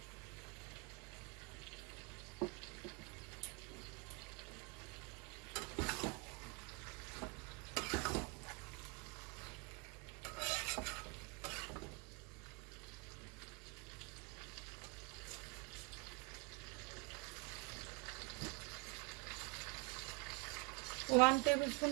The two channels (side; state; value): left; quieter; 26.7 dB